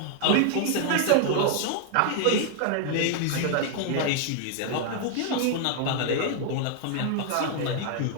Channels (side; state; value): both; different; correlation 0.00